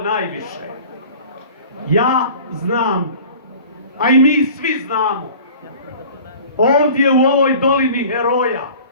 Ja znam, a i mi svi znamo, ovdje u ovoj dolini heroja,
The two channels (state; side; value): inverted; both; correlation -0.44